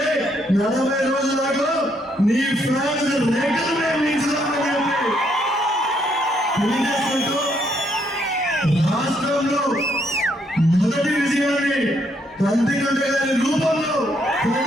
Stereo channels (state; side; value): normal; both; correlation 0.73